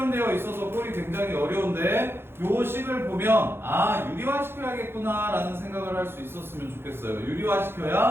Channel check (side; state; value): left; late; 0.11 ms